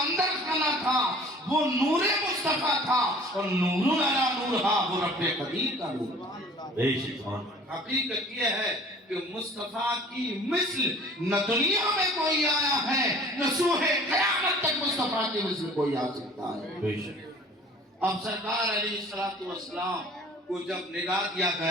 خانہ تھا وہ نور مصطفیٰ تھا، اور نور علی نور تھا، وہ رب قدیر کا نور تھا۔ بے شک، سبحان اللہ، حقیقت یہ ہے کہ مصطفیٰ کی مثل نہ دنیا میں کوئی آیا ہے، نہ سوہ قیامت تک مصطفیٰ کی مثل کوئی آ سکتا ہے۔ بے شک، اب سرکار علیہ السلام کو جب نگاہ دیا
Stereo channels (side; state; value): both; normal; correlation 0.48